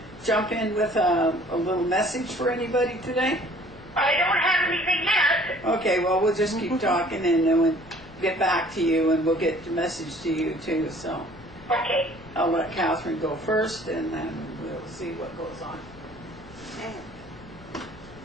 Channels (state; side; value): noise; left; rumble, 21 dB below the sound